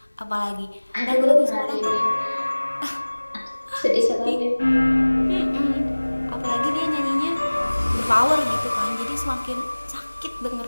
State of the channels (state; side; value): inverted; both; correlation -1.00